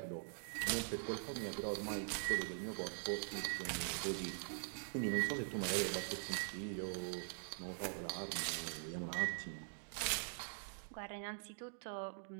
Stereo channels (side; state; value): left; silent; digital silence